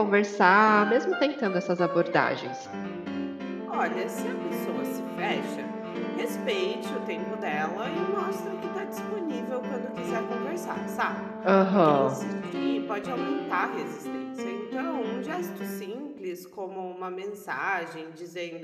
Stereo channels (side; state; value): both; identical; correlation 1.00